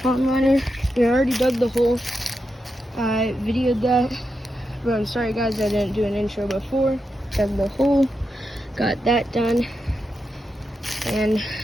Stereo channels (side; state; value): both; normal; correlation 0.87